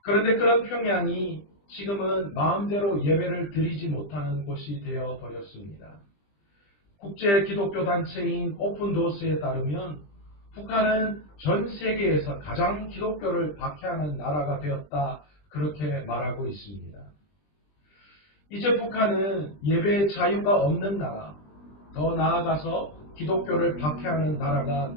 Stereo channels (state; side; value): late; right; 20 ms